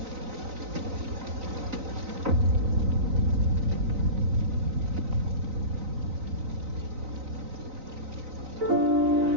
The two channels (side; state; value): left; late; 3.9 ms